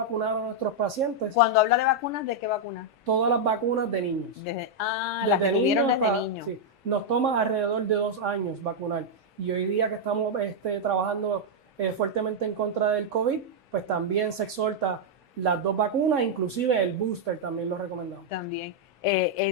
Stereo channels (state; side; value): normal; both; correlation -0.03